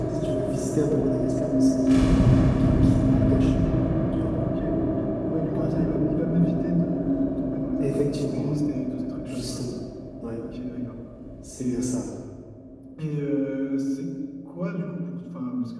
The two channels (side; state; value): both; identical; correlation 1.00